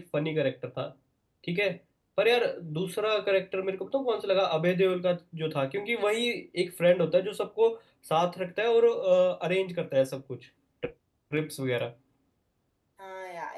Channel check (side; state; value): both; identical; correlation 1.00